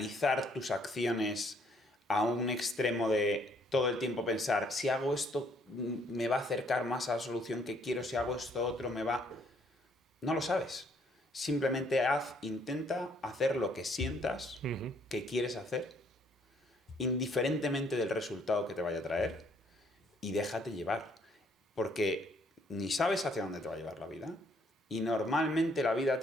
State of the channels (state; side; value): normal; both; correlation 0.66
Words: tus acciones a un extremo de todo el tiempo pensar, si hago esto me va a acercar más a la solución que quiero, si hago esto otro me va... No lo sabes. Simplemente intenta hacer lo que sientas que quieres hacer, indiferentemente del resultado que te vaya a traer, y déjate llevar. Porque ni sabes hacia dónde te va a llevar la vida, y normalmente la vida